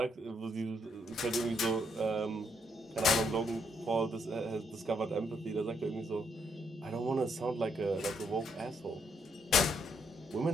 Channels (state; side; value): normal; both; correlation 0.74